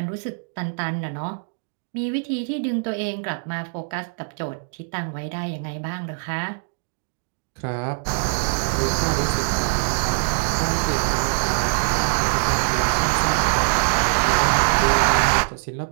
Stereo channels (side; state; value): left; silent; digital silence